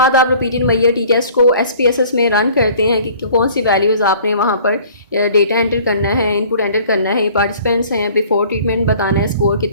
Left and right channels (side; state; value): both; inverted; correlation -0.51